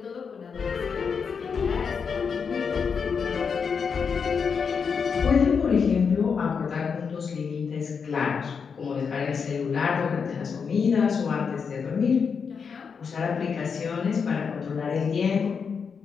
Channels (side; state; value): right; quieter; 6.0 dB